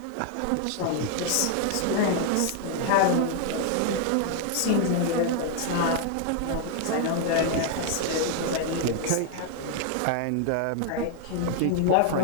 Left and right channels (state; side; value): different; both; correlation 0.00